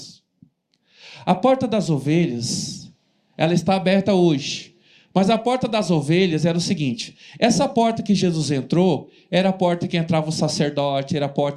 A Porta das Ovelhas, ela está aberta hoje. Mas a Porta das Ovelhas era o seguinte: essa porta que Jesus entrou, era a porta que entrava o sacerdote, era a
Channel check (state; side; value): identical; both; correlation 1.00